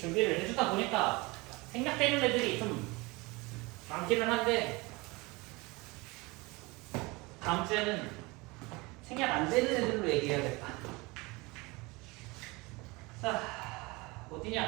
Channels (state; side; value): quieter; left; 24.5 dB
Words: 해주다 보니까 생략되는 애들이 좀 많기는 한데 다음 주에는 생략 안 되는 애들로 얘기해야겠다. 자,